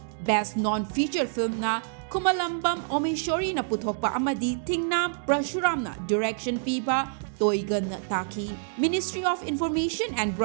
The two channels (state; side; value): silent; left; digital silence